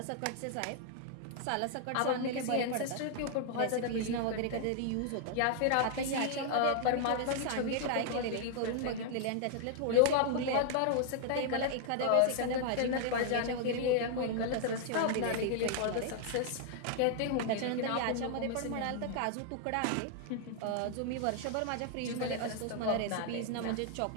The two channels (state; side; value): different; both; correlation 0.00